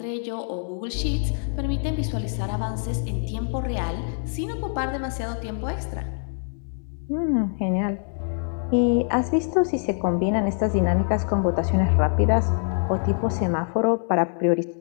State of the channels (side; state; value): right; silent; 62 dB below the other